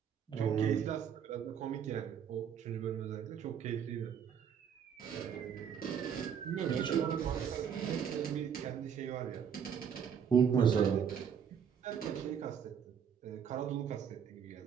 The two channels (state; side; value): quieter; left; 7.8 dB